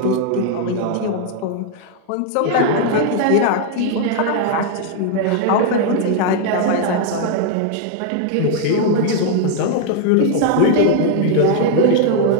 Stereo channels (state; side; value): different; both; correlation 0.00